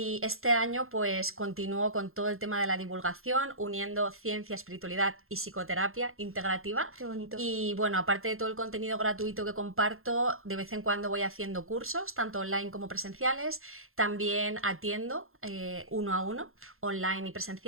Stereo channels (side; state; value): left; late; 0.61 ms